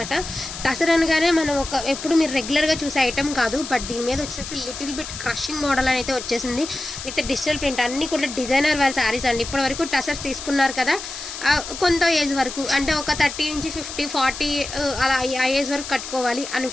టసర్ అనగానే మనం ఎప్పుడు మీరు రెగ్యులర్గా చూసే ఐటమ్ కాదు, బట్ దీని మీద వచ్చేటప్పటికి లిటిల్ బిట్ క్రషింగ్ మోడల్ అని అయితే వచ్చేసింది విత్ డిజిటల్ ప్రింట్. అన్నీ కూడా డిజైనర్ వేర్ శారీస్ అండి. ఇప్పటి వరకు టసర్స్ తీసుకున్నారు కదా, కొంత ఏజ్ వరకు అంటే ఒక 30 నుంచి 50, 40 అలా ఆ ఏజ్ వరకు కట్టుకోవాలి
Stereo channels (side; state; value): left; noise; hiss, 9 dB below the sound